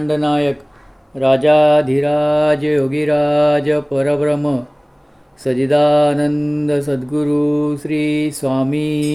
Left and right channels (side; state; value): both; identical; correlation 1.00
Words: नायक राजाधिराज योगीराज परब्रह्म सजिदानंद सद्गुरु श्री